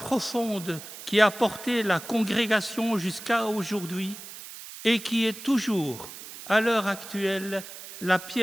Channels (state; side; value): noise; right; hiss, 13 dB below the sound